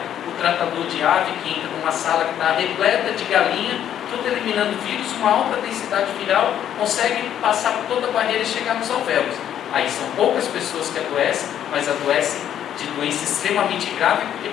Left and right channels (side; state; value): right; quieter; 10.3 dB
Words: o tratador de ave que entra numa sala que está repleta de galinha, tudo eliminando vírus, uma alta densidade viral, consegue passar por toda a barreira e chegar nos alvéolos. Aí são poucas pessoas que adoecem, mas adoecem de doença extremamente grave, porque